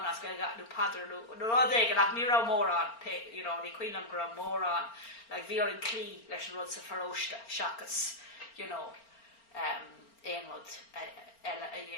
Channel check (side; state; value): right; late; 4.4 ms